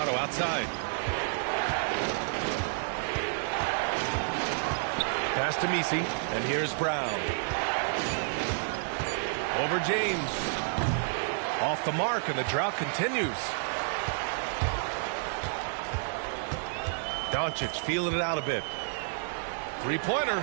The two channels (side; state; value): left; silent; 55 dB below the other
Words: outside. Pass to Messi, and here's Brown. Over James. Off the mark, and the drought continues. Doncic feeling it out a bit. Three-pointer.